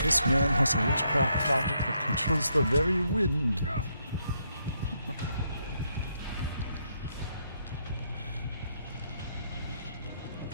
This man has a witchcraft object that controls the very wind.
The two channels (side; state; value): both; inverted; correlation -0.76